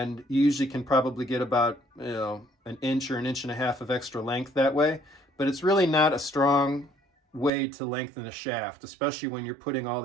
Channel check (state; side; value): drops out; left; at 7.5 s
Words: you usually can probably get about, you know, an inch or an inch and a half of extra length that way. But it's really not a strong way to lengthen a shaft, especially when you're putting all